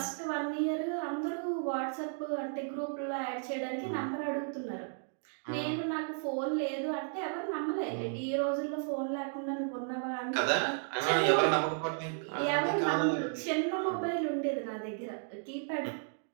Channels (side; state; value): left; silent; 55 dB below the other